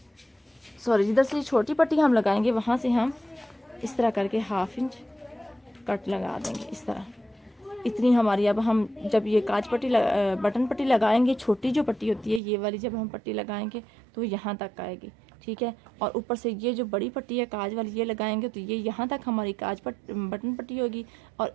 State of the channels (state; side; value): drops out; left; at 12.4 s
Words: जिधर से छोटी पट्टी हम लगाएंगे वहाँ से हम इस तरह करके 1/2 इंच कट लगा देंगे, इस तरह। इतनी हमारी, अब हम जब ये काज पट्टी बटन पट्टी लगाएंगे, छोटी जो पट्टी होती है ये वाली, जब हम पट्टी लगाएंगे तो यहाँ तक आएगी, ठीक है। और ऊपर से ये जो बड़ी पट्टी है काज वाली ये लगाएंगे तो ये यहाँ तक हमारी बटन पट्टी होगी। और